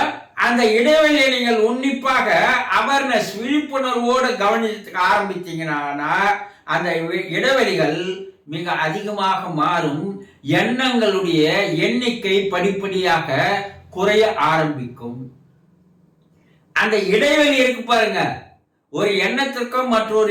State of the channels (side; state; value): both; identical; correlation 1.00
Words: அந்த இடைவெளியை நீங்கள் உன்னிப்பாக அவேர்னஸ் விழிப்புணர்வோடு கவனிக்க ஆரம்பித்தீங்கன்னா அந்த இடைவெளிகள் மிக அதிகமாக மாறும். எண்ணங்களுடைய எண்ணிக்கை படிப்படியாக குறைய ஆரம்பிக்கும். அந்த இடைவெளி இருக்கு பாருங்க, ஒரு எண்ணத்திற்கும்